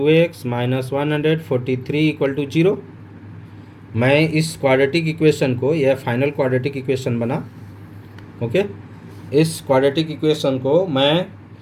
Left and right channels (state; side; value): identical; both; correlation 1.00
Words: minus 143 equal to 0। मैं इस क्वाड्रेटिक इक्वेशन को, यह फाइनल क्वाड्रेटिक इक्वेशन बना, ओके, इस क्वाड्रेटिक इक्वेशन को मैं